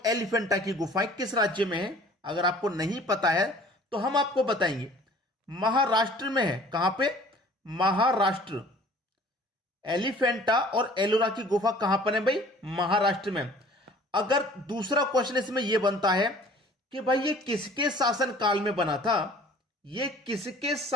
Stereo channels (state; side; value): normal; both; correlation 0.50